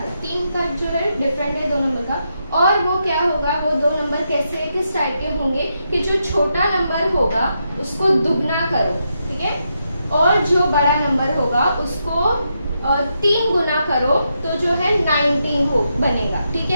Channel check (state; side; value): inverted; both; correlation -0.83